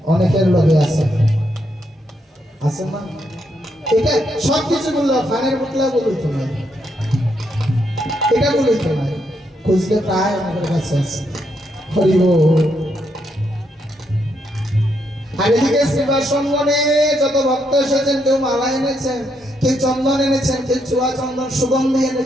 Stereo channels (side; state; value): both; normal; correlation 0.78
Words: অনেকের লগে আছে আছে না এটা সব কিছু বললো ফানের বোতলা বলুই তো নাই এটা বলুই তো নাই খুঁজলে প্রায় আমাদের কাছে আছে হরি বল আর এদিকে শ্রীবাসনে যত ভক্ত এসেছেন কেউ মালা এনেছেন কেউ চন্দন এনেছেন কেউ চুয়া চন্দন সুগন্ধি